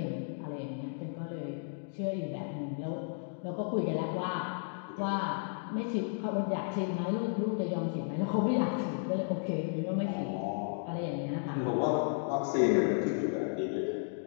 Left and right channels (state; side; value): silent; right; digital silence